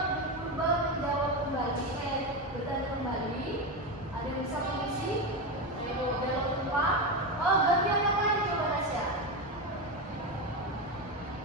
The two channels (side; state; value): both; normal; correlation 0.15